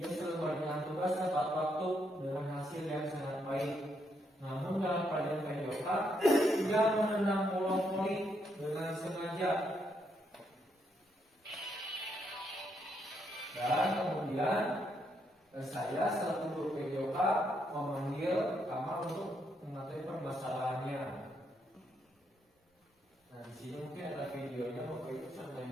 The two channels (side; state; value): both; normal; correlation 0.76